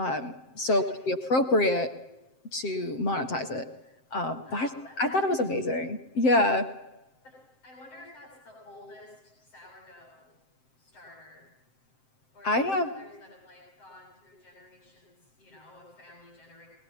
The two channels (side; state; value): right; late; 7.7 ms